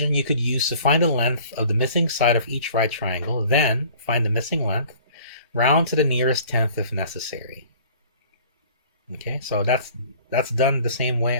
you could use to find the length of the missing side of each right triangle, then find the missing length, round to the nearest tenth if necessary. Okay, so that's done the same way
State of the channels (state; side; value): inverted; both; correlation -0.50